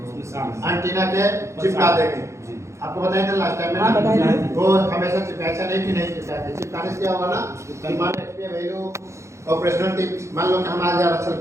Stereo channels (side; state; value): left; late; 0.14 ms